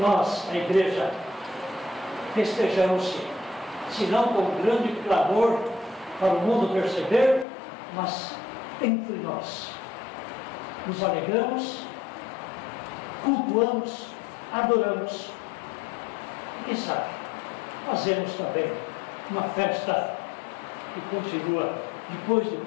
a igreja, festejamos, se não com grande clamor para o mundo perceber, mas entre nós. Nos alegramos, cultuamos, adoramos. E quem sabe, fazemos também uma festa que continua depois do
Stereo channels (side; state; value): right; drops out; at 7.5 s